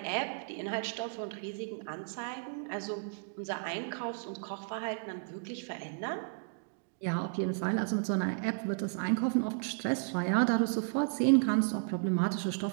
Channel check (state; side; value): silent; left; digital silence